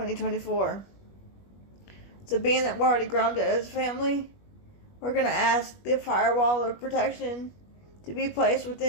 So being that we're already grounded as family, we're going to ask the firewall of protection to be placed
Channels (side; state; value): right; late; 21 ms